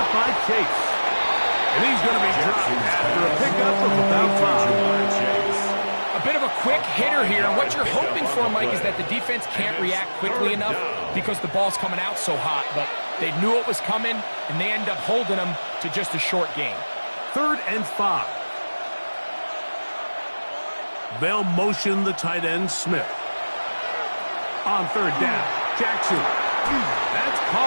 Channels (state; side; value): inverted; both; correlation -1.00